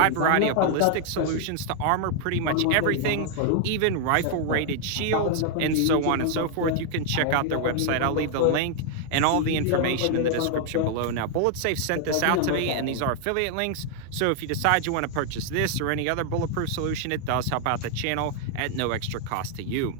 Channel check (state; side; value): different; both; correlation 0.00